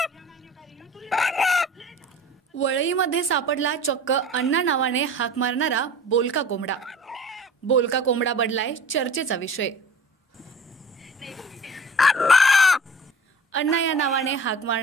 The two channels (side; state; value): both; normal; correlation 0.42